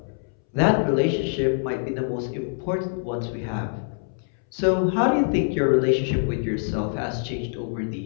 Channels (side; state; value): right; silent; 62 dB below the other